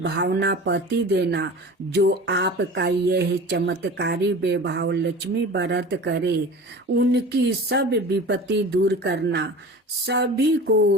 भावना पति देना। जो आपका यह चमत्कारी वैभव लक्ष्मी व्रत करे, उनकी सब विपत्ति दूर करना, सभी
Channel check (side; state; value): both; normal; correlation 0.37